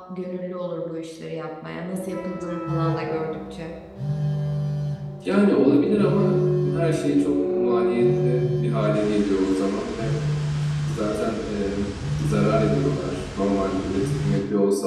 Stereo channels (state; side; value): identical; both; correlation 1.00